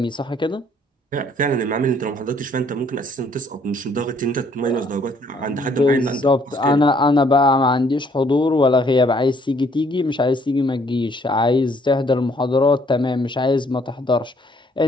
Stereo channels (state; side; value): normal; both; correlation 0.64